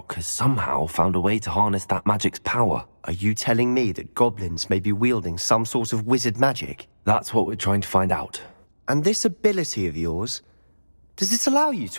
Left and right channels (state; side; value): inverted; both; correlation -1.00